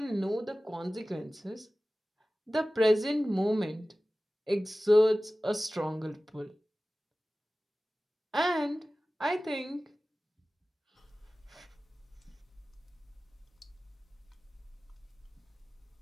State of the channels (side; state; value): both; normal; correlation 0.96